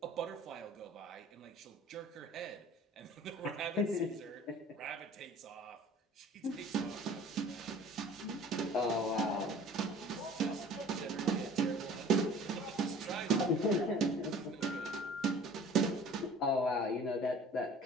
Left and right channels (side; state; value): both; normal; correlation 0.47